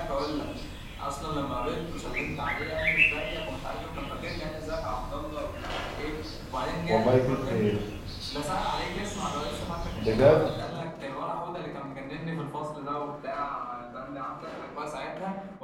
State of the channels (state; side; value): identical; both; correlation 1.00